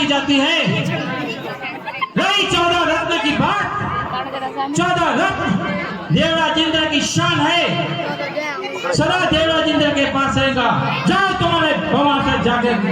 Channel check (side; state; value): both; identical; correlation 1.00